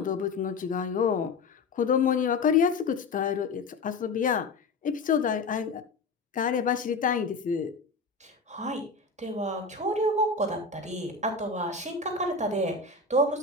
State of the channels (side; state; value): right; quieter; 3.9 dB